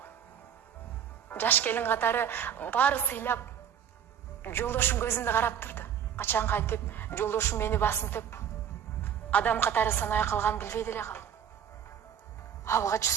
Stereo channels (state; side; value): quieter; left; 8.8 dB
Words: Жаш келин катары баары сыйлап, жолдошум көзүмдө карап турду. Качан кайтып, жолдошум мени басынтып, адам катары санай калган билбей деле калдым. Алгач